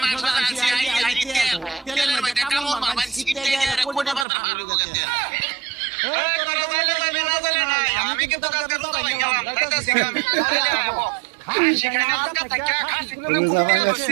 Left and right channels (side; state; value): left; drops out; at 4.2 s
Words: মাংস জানছি আই তেলের মধ্যে কামড় মারবেন সিকিট দিয়ে কোনে পাতা আর গেছে আমি কিন্তু কালকে রোজা ভাই গেলাম তাইতাছি আমি খাসি খাইনা আজকে থাকা খাসি করে কুমিয়ে